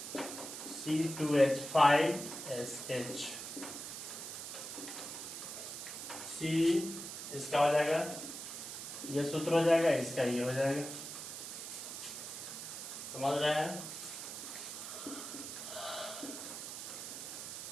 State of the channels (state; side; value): noise; right; hiss, 8 dB below the sound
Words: C2H5SH। C इसका हो जाएगा, ये सूत्र हो जाएगा, इसका ये हो जाएगा। समझ रहे हैं।